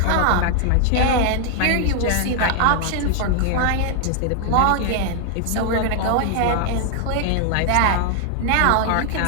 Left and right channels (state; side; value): different; both; correlation 0.00